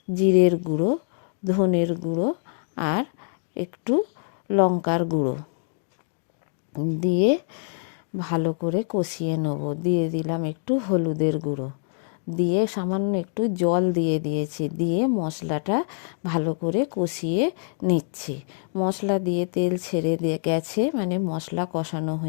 জিরের গুঁড়ো, ধনের গুঁড়ো আর একটু লঙ্কার গুঁড়ো, দিয়ে ভালো করে কষিয়ে নেব। দিয়ে দিলাম একটু হলুদের গুঁড়ো, দিয়ে সামান্য একটু জল দিয়েছি, দিয়ে মশলাটা ভালো করে কষিয়ে নিচ্ছি। মশলা দিয়ে তেল ছেড়ে গেছে, মানে মশলা কষানো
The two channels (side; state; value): right; silent; digital silence